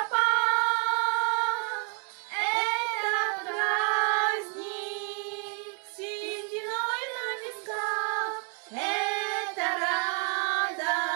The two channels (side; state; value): left; quieter; 39.6 dB